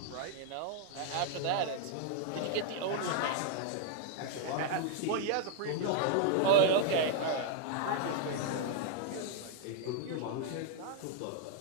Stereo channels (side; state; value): both; different; correlation -0.01